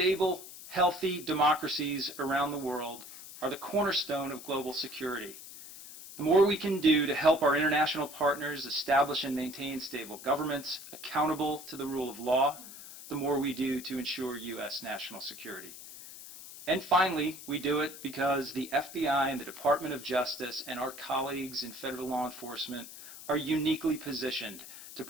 healthy democracies around the world are the cornerstone of global security. The more we can do to help our international partners establish and maintain stable governments accountable to the rule of law, the more we do to ensure U.S. national security. And finally, we do it because the FBI and the Department of Justice and our colleagues in federal law enforcement are uniquely positioned to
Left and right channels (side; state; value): left; noise; hiss, 14 dB below the sound